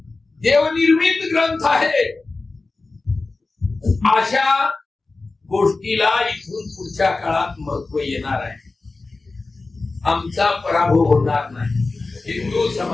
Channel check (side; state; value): right; quieter; 3.6 dB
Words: देवनिर्मित ग्रंथ आहे, अशा गोष्टीला इथून पुढच्या काळात महत्व येणार आहे. आमचा पराभव होणार नाही. हिंदू